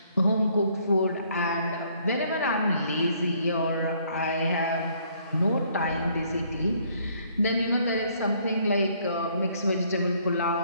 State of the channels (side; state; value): both; inverted; correlation -0.64